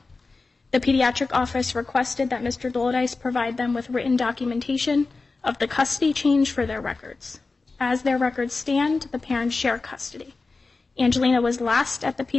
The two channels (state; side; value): quieter; right; 3.9 dB